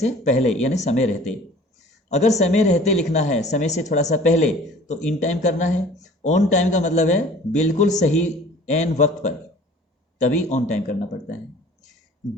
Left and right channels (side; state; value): both; normal; correlation 0.48